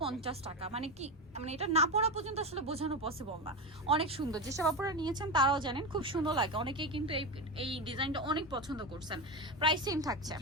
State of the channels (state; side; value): normal; both; correlation 0.17